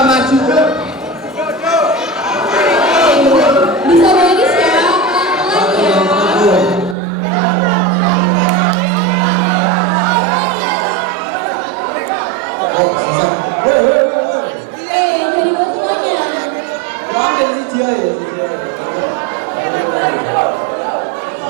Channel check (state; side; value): drops out; left; at 7.0 s